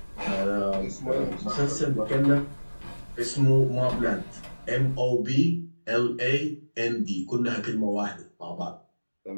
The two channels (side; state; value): both; inverted; correlation -1.00